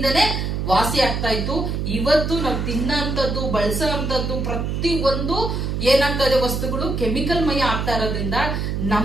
ವಾಸಿ ಆಗ್ತಾ ಇತ್ತು. ಇವತ್ತು ನಾವು ತಿನ್ನಂತದ್ದು ಬಳಸೋ ಅಂತದ್ದು ಪ್ರತಿ ಒಂದು ಏನಾಗ್ತಾ ಇದೆ ವಸ್ತುಗಳು ಕೆಮಿಕಲ್ ಮಯ ಆಗ್ತಾ ಇರೋದ್ರಿಂದ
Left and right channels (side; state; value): right; noise; hum, 2 dB below the sound